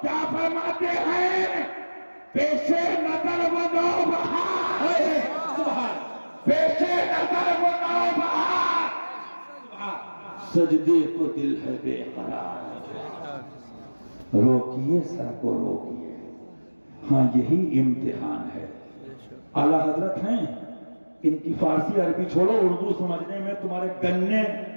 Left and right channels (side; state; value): both; inverted; correlation -1.00